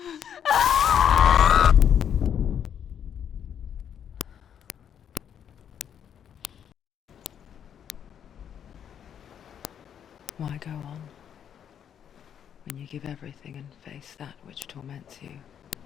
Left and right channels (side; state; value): right; quieter; 8.8 dB